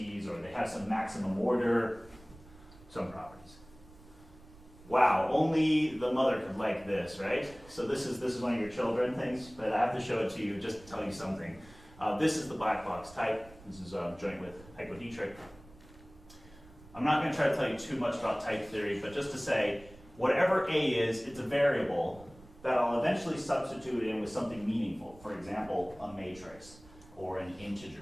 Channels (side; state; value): right; noise; rumble, 22 dB below the sound